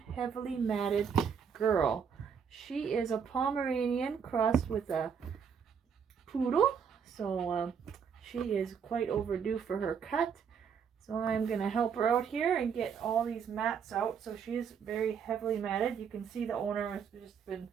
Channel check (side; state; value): left; quieter; 7.0 dB